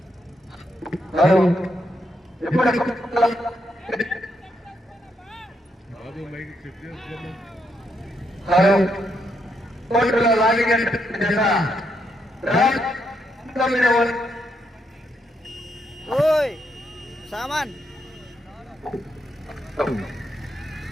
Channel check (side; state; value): both; normal; correlation 0.79